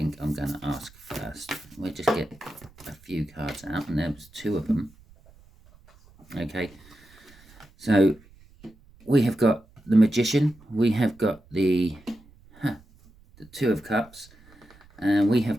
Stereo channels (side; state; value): right; noise; rumble, 26 dB below the sound